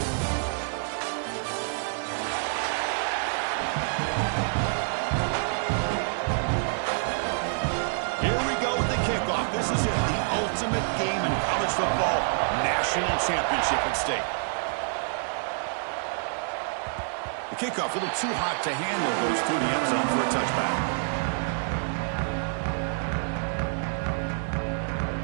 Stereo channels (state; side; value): silent; left; 59 dB below the other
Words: This is it, the ultimate game in college football, national championship at stake. The kickoff a little too hot to handle, goes through the end zone for a touchback.